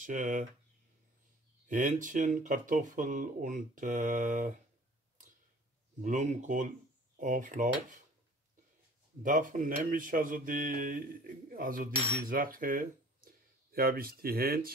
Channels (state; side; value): normal; both; correlation 0.49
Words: Hähnchen, Kartoffel und Blumenkohlauflauf. Davon nehme ich die Sache, hier habe ich die